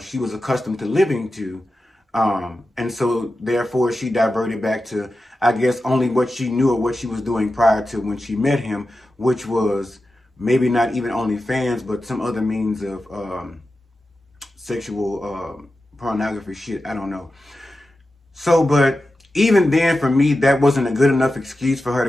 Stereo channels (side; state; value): both; normal; correlation 0.92